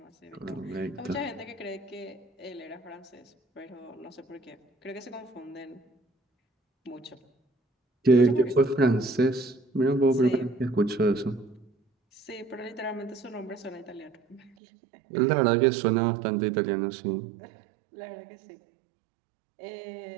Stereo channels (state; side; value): drops out; left; at 14.5 s